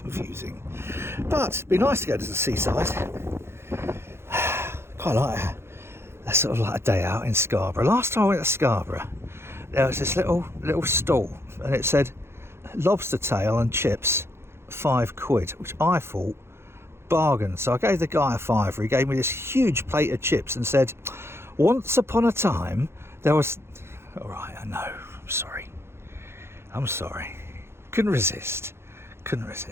But it'd be nice to go to the seaside. Quite like a sort of like a day out in Scarborough. Last time I went to Scarborough, there was this little stall, and it said lobster tail and chips, £5, which I thought bargain. So I gave the guy a fiver. He gave me this huge plate of chips and said, once upon a time there was... All right, I know, I'm sorry, couldn't resist.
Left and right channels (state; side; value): late; left; 0.12 ms